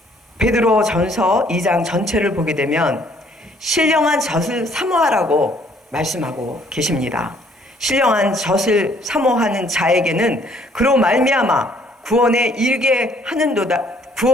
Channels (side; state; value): both; normal; correlation 0.62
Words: 베드로 전서 2장 전체를 보게 되면 신령한 젖을 사모하라고 말씀하고 계십니다. 신령한 젖을 사모하는 자에게는 그로 말미암아 구원에